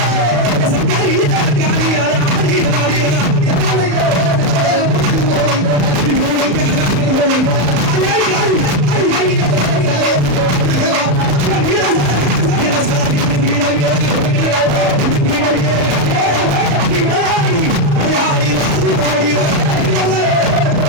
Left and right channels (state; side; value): late; left; 34 ms